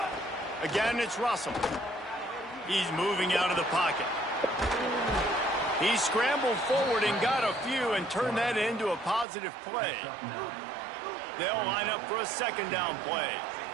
Again, it's Russell. He's moving out of the pocket. He scrambled forward and got a few and turned that into a positive play. They'll line up for a 2nd down play.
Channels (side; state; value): left; drops out; at 9.2 s